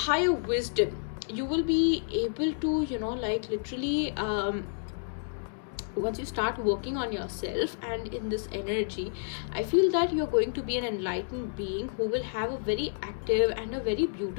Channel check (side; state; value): right; silent; digital silence